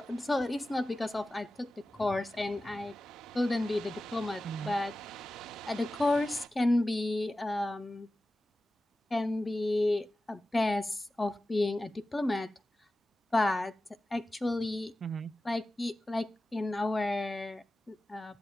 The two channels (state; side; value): normal; both; correlation 0.95